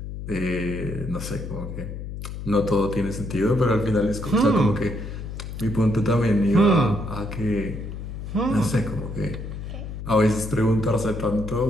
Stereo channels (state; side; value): noise; left; hum, 8 dB below the sound